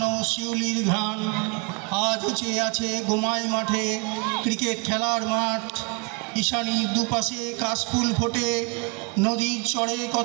শিউলির ঘ্রাণ। আজও চেয়ে আছে গোমাই মাঠে ক্রিকেট খেলার মাঠ। ঈশানীর দুপাশে কাশফুল ফোটে, নদীর চড়ে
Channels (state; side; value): quieter; left; 30.9 dB